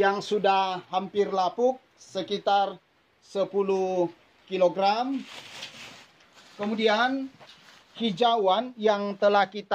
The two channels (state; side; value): identical; both; correlation 1.00